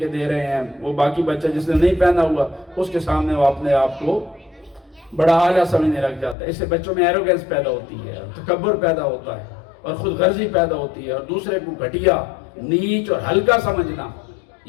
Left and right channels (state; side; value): drops out; right; at 6.4 s